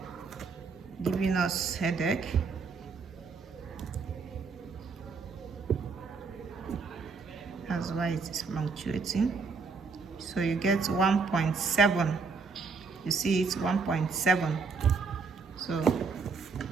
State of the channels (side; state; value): left; quieter; 4.8 dB